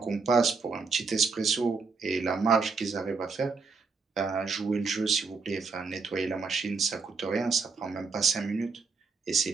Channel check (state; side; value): quieter; left; 4.7 dB